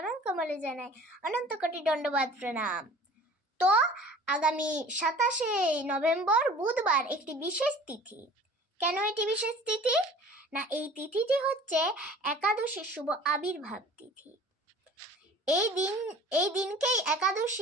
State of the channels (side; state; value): both; normal; correlation 0.46